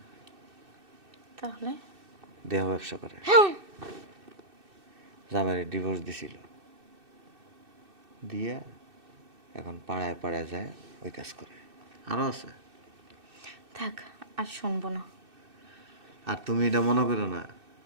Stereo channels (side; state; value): left; late; 2.6 ms